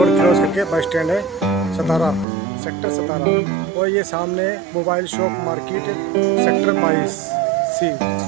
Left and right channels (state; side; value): drops out; left; at 2.2 s